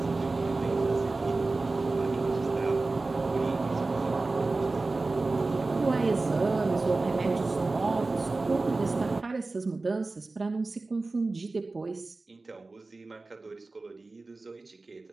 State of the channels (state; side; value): quieter; left; 3.5 dB